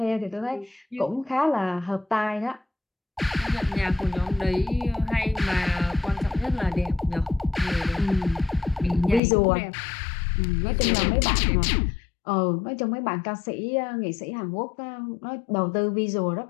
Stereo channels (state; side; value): drops out; right; at 9.2 s